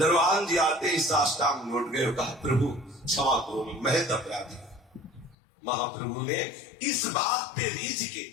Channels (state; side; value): drops out; right; at 5.4 s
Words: जी आते ही साष्टांग लौट गए, कहा प्रभु क्षमा करो, मैं महत अपराधी। महाप्रभु ने इस बात पे रीझ के